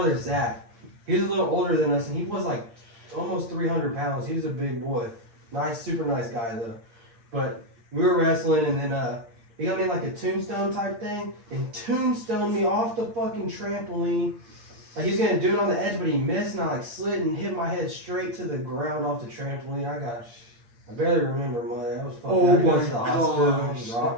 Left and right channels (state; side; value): late; left; 8.7 ms